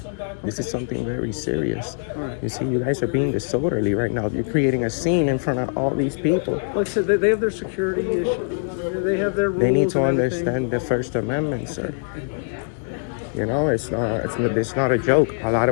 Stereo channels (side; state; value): right; silent; 64 dB below the other